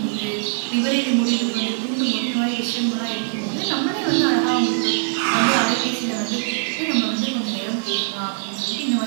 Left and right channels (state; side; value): silent; left; 63 dB below the other